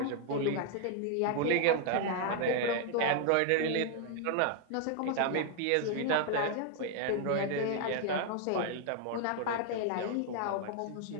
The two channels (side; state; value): both; different; correlation 0.00